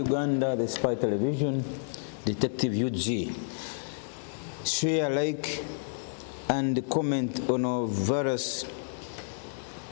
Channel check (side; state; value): right; silent; digital silence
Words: the spy television, Detective UG. Share, like, and comment on our various